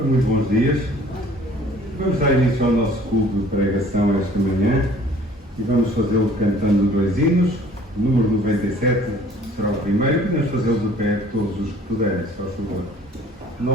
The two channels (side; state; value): both; normal; correlation 0.53